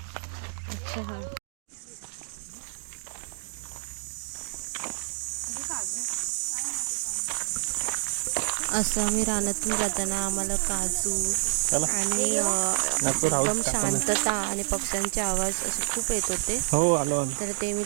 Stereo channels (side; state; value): left; silent; digital silence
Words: असं आम्ही रानातून जाताना आम्हाला काजू आणि एकदम शांतता आणि पक्ष्यांचे आवाज असे खूप येत होते. हो आलो. तर ते मी